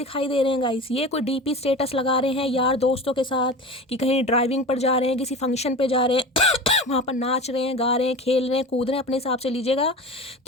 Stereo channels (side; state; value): both; normal; correlation 0.32